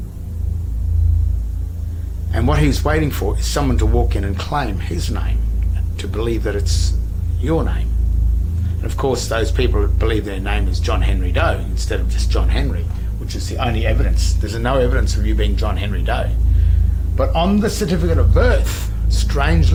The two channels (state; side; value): identical; both; correlation 1.00